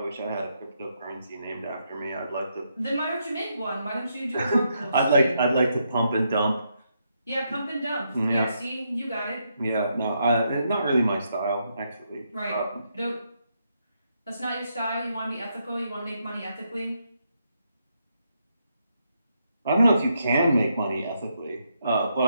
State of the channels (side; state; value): both; inverted; correlation -0.79